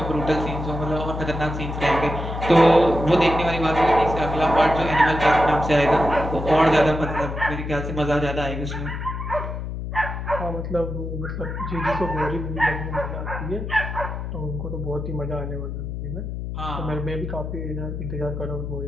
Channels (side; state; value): left; noise; hum, 5 dB below the sound